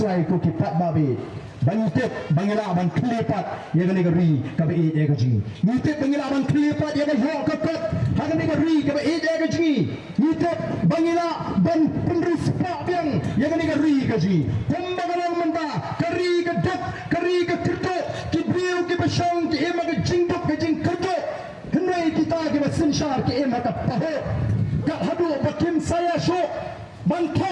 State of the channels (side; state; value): both; identical; correlation 1.00